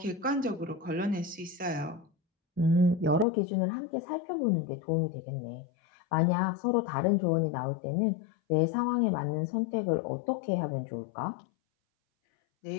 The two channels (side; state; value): right; drops out; at 3.2 s